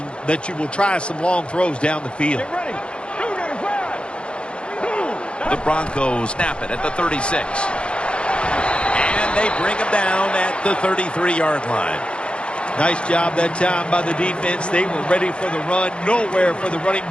that you will try some long throws down the field. The Broncos snap it at the 36. And they bring him down at the 33-yard line. Nice job that time by the defense. They were ready for the run, nowhere for the running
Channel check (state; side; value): late; right; 0.058 ms